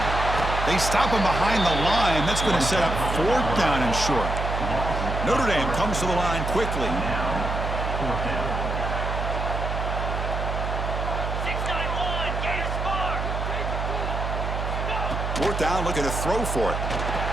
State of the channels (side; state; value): right; noise; hum, 2 dB below the sound